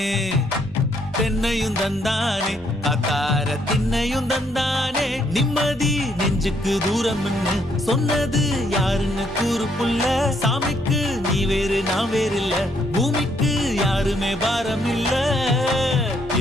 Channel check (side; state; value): left; noise; hum, 22 dB below the sound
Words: தென்னையும் தந்தானே அத்தார திண்ணையும் தந்தானே நிம்மதி நெஞ்சுக்கு தூரம் சொன்னது யாருன்னு கூறு புள்ள சாமிக்கு நீ வேறு நான் வேறு இல்ல பூமிக்கு யாருமே பாரம் இல்ல